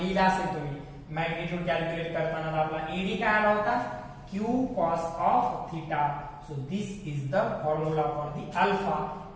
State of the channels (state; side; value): identical; both; correlation 1.00